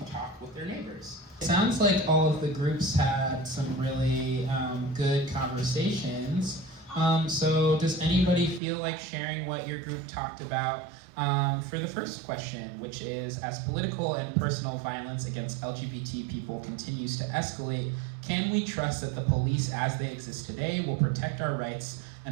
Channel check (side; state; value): left; drops out; at 8.6 s